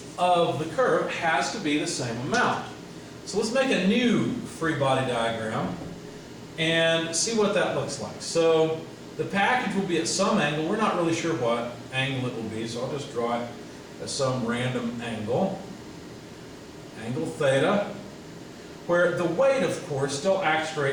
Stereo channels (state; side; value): identical; both; correlation 1.00